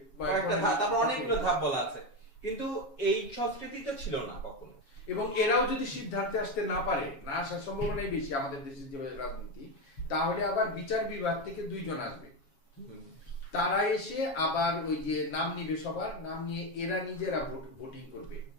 কয়েকটা ধাপ, তারপর অনেকগুলো ধাপ বলা আছে, কিন্তু এই সংস্কৃতি তো ছিল না কখনো। এবং এরাও যদি সিদ্ধান্তে আসতে না পারে, না আসার সম্ভাবনাই বেশি আমাদের দেশের যে রাজনীতি, তাহলে আবার বিচার বিভাগ থেকে 2 জন আসবে, তারা এসে আবার ওই যে নাম নিবে, সবার নাম নিয়ে এরা নিজেরা ভোটিং করবে।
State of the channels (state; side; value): late; right; 7.2 ms